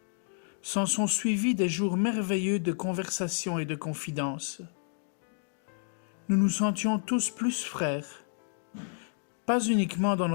S'en sont suivis des jours merveilleux de conversation et de confidence. Nous nous sentions tous plus frères, pas uniquement dans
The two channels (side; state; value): right; silent; digital silence